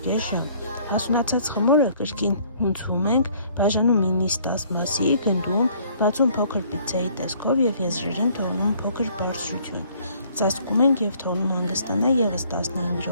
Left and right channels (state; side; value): inverted; both; correlation -0.60